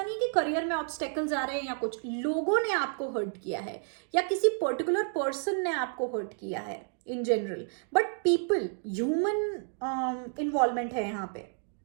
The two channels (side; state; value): left; silent; 57 dB below the other